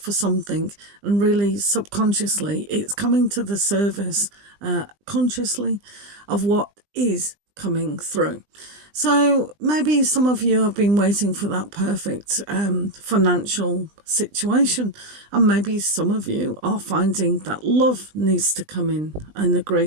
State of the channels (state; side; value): late; left; 20 ms